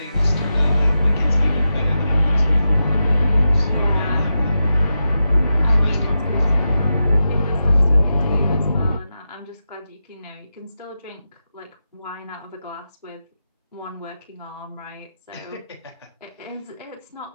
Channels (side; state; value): both; inverted; correlation -0.89